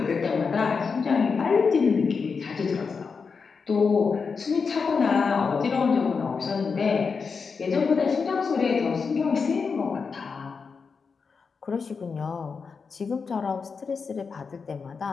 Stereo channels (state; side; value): quieter; right; 5.3 dB